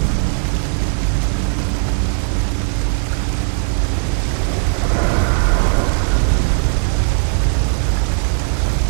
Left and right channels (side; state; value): left; silent; 59 dB below the other